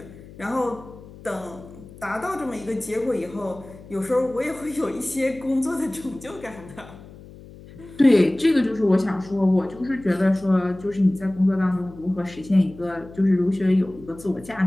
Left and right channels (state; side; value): noise; left; hum, 19 dB below the sound